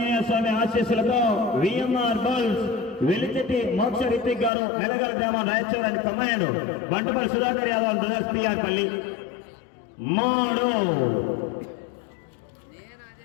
స్వామి ఆశీస్సులతో విఎంఆర్ బాల్స్ వెలిచెట్టి మోక్ష రితిక్ గారు మెలగల్ గ్రామం రాయచూర్ అని command Bantupalli Sudhakar Yadav brothers PR పల్లి 3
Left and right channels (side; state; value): right; drops out; at 4.5 s